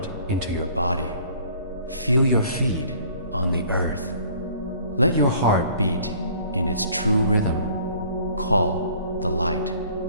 into your body. Feel your feet on the earth. Let your heart beat in its true rhythm. Call the light.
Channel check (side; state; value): both; inverted; correlation -0.54